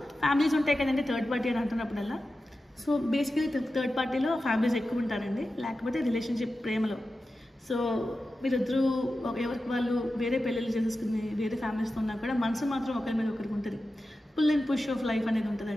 ఫ్యామిలీస్ ఉంటాయి కదండి థర్డ్ పార్టీ అని అంటున్నప్పుడల్లా. సో బేసికలీ థర్డ్ పార్టీలో ఫ్యామిలీస్ ఎక్కువ ఉంటారండి, లేకపోతే రిలేషన్షిప్ ప్రేమలో. సో మీరిద్దరూ ఎవరికి వాళ్ళు వేరే పెళ్ళిళ్ళు చేసేసుకుని వేరే ఫ్యామిలీస్తో ఉన్నా కూడా మనసు మాత్రం ఒకరి మీద ఒకరికి ఉంటుంది. Pull and push of life అనేది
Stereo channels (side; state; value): both; normal; correlation 0.92